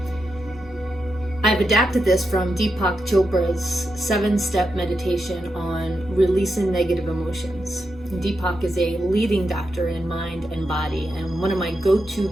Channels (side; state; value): both; normal; correlation 0.86